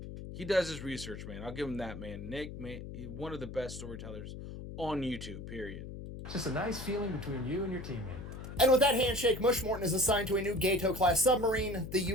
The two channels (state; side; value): noise; left; hum, 10 dB below the sound